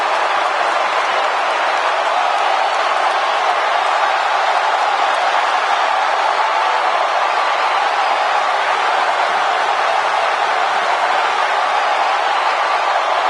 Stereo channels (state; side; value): identical; both; correlation 1.00